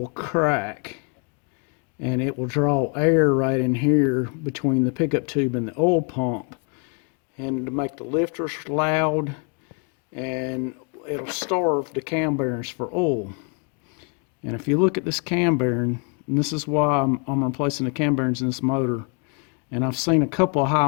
crack, and it will draw air right in here between the pickup tube and the oil pump, and to make the lifters loud, and it'll starve the cam bearings for oil. And if you look at this cam bearing, and this is why I'm replacing the cam bearings in this motor, and I've seen a couple of high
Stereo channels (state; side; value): quieter; right; 37.6 dB